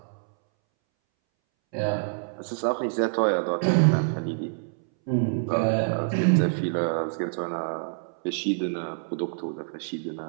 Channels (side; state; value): left; silent; 61 dB below the other